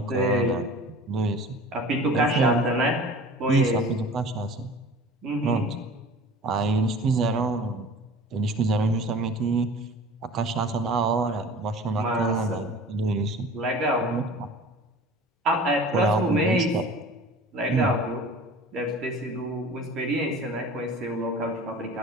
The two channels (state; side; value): normal; both; correlation 0.42